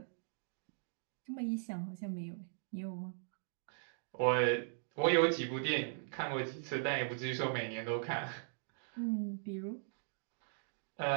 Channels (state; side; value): silent; left; digital silence